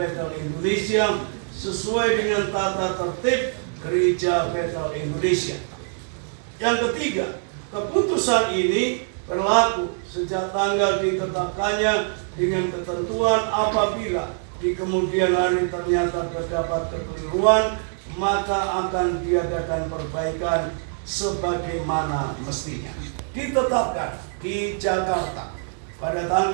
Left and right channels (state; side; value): silent; left; 61 dB below the other